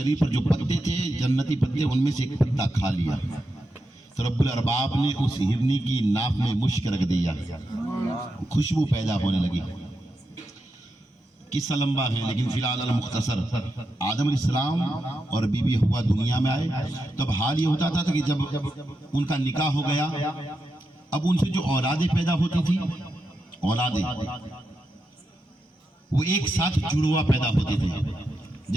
पर जो पत्ते थे, जन्नती पत्ते, उनमें से एक पत्ता खा लिया। तो रब्बुल अरबाब ने उस हिरनी की नाक में मुश्क रख दिया, खुशबू पैदा होने लगी। किस्सा लंबा है लेकिन फिलहाल अल मुख्तसर, आदम अलैहिस्सलाम और बीबी हव्वा दुनिया में आए। तब हाल ये होता था कि जब उनका निकाह हो गया, अब उनसे जो औलादें पैदा होती थी, औलादें वो एक साथ जुड़वा पैदा होते थे।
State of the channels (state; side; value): normal; both; correlation 0.87